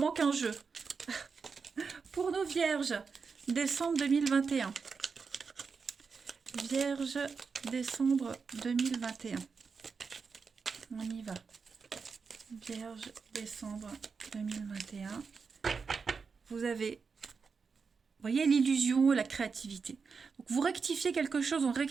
un jeu. Pour nos Vierges, décembre 2021. Vierge, décembre 2021. On y va. Vierge, décembre 2021. Vous avez... Vous voyez l'illusion, la créativité. Donc vous rectifiez quelque chose, on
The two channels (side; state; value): left; quieter; 5.3 dB